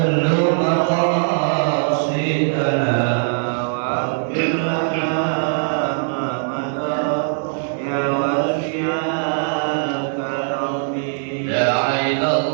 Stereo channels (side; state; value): left; silent; digital silence